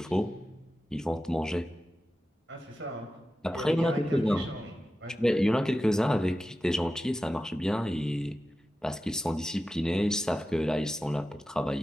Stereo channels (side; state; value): both; normal; correlation 0.93